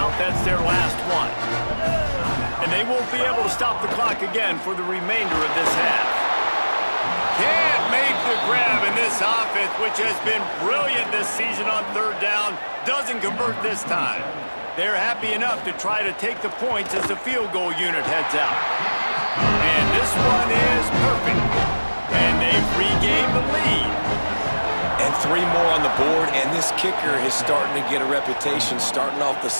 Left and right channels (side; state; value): both; inverted; correlation -1.00